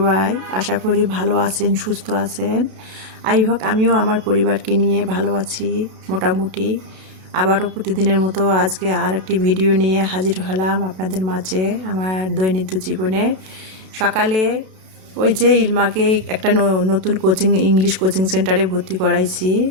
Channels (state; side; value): late; left; 32 ms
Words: আশা করি ভালো আছেন, সুস্থ আছেন। আমিও আমার পরিবারকে নিয়ে ভালো আছি মোটামুটি। আবারও প্রতিদিনের মতো আজকে আর একটি ভিডিও নিয়ে হাজির হলাম আপনাদের মাঝে। আমার দৈনন্দিন জীবনে সকালে ওই যে ইলমাকে একটা নতুন ইংলিশ কোচিং সেন্টারে ভর্তি করাইছি।